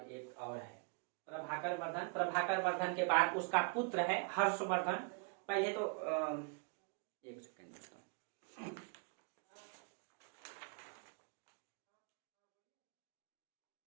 एक और है प्रभाकर वर्धन। प्रभाकर वर्धन के बाद उसका पुत्र है हर्षवर्धन। पहले तो एक सेकंड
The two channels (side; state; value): left; quieter; 38.6 dB